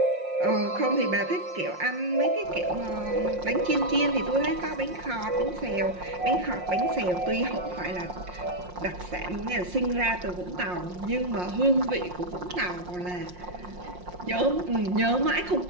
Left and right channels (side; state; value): left; late; 5.6 ms